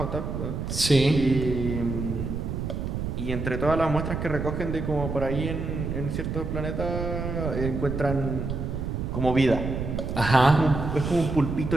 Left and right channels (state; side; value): noise; right; rumble, 3 dB below the sound